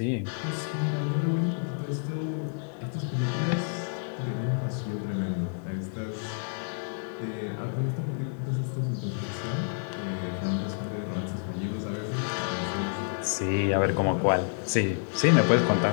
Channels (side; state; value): right; silent; 59 dB below the other